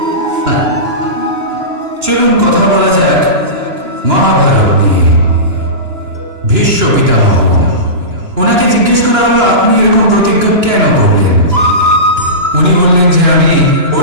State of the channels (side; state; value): left; late; 2.9 ms